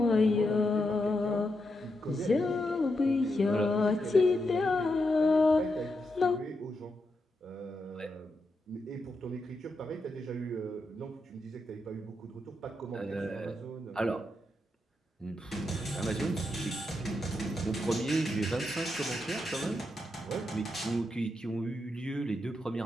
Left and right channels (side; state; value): both; normal; correlation 0.84